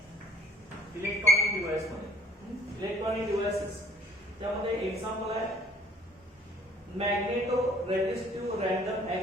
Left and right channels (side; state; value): both; normal; correlation 0.56